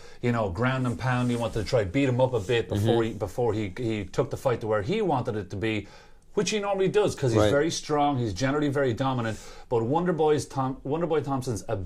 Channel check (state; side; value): identical; both; correlation 1.00